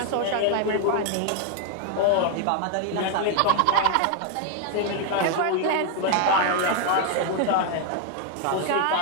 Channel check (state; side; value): different; both; correlation 0.01